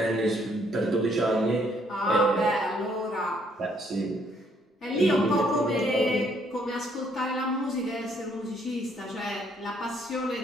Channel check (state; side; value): normal; both; correlation 0.68